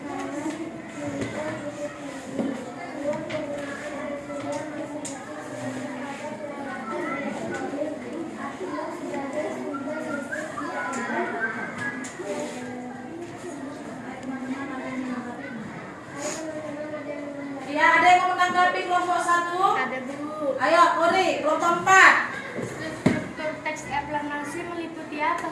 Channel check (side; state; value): both; identical; correlation 1.00